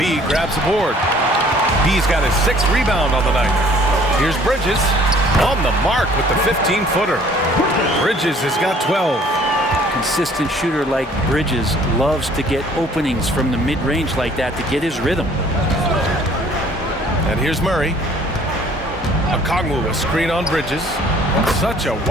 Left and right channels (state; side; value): normal; both; correlation 0.56